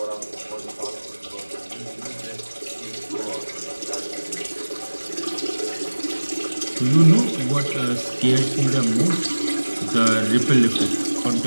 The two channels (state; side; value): inverted; both; correlation -1.00